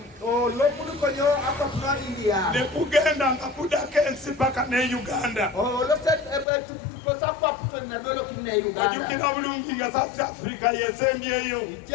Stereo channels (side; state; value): right; drops out; at 6.5 s